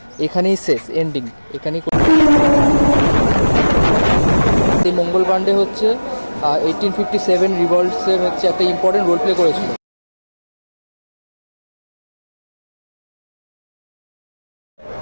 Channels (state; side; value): inverted; both; correlation -1.00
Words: এখানেই শেষ, এন্ডিং এখানেই। এই মঙ্গল পাণ্ডে হচ্ছে 1857 রিভলটসের হচ্ছে একটা ইম্পর্টেন্ট রোল প্লে করেছিল।